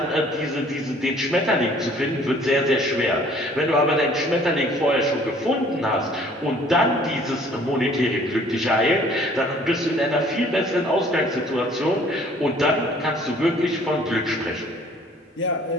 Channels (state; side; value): normal; both; correlation 0.56